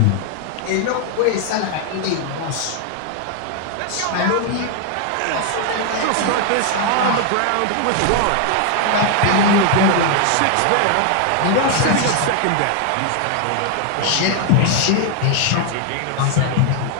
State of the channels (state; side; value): different; both; correlation 0.00